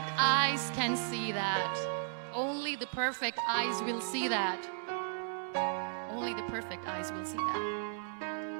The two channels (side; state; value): left; silent; digital silence